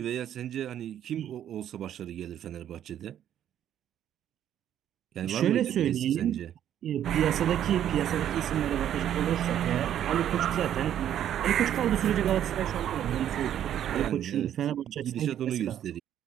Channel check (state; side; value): quieter; left; 10.6 dB